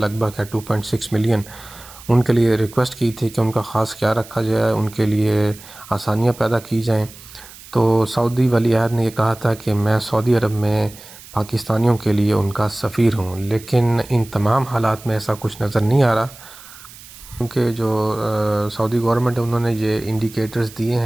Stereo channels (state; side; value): noise; right; hiss, 19 dB below the sound